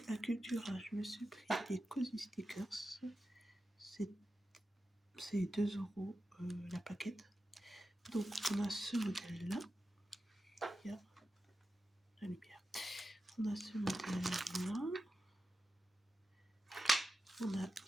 à Cultura, je me suis pris des Cozy Stickers. C'est 2 € la paquette. Donc, on a ce modèle-là. Il y a la lumière. On a ce modèle-là. On a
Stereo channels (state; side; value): normal; both; correlation 0.91